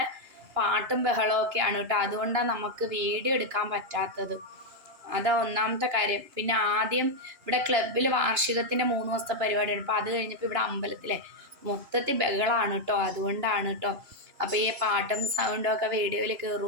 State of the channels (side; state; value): left; late; 2.9 ms